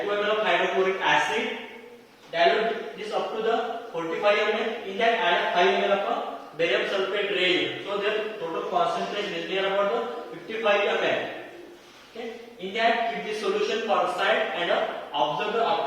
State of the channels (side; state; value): both; identical; correlation 1.00